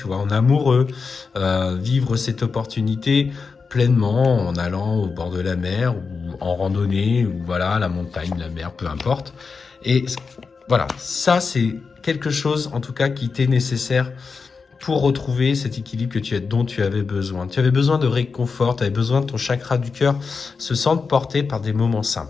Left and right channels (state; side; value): quieter; right; 4.9 dB